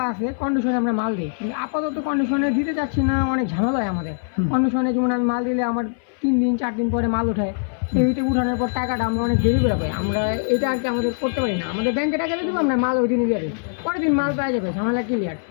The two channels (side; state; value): right; silent; 59 dB below the other